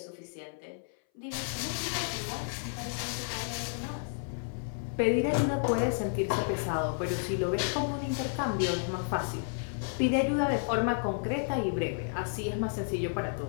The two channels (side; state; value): right; silent; 57 dB below the other